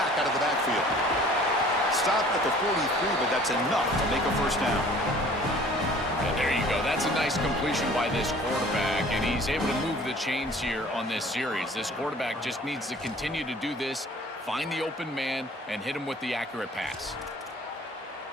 out of the backfield. Stopped at the 43, but that's enough to make a first down. And there you go. That's a nice completion by this quarterback, and he's able to move the chains here on this series. This quarterback just needs to continue to do this, find the open man, and hit him with the accurate pass.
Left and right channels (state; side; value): normal; both; correlation 0.50